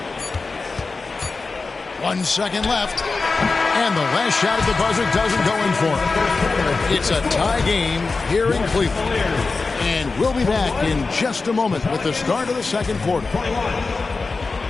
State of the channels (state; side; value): quieter; right; 4.0 dB